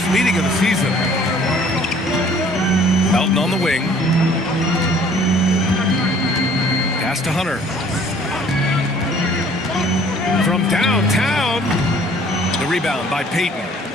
meeting of the season. Melton on the wing. Pass to Hunter. From downtown. The rebound by Payton.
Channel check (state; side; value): normal; both; correlation 0.55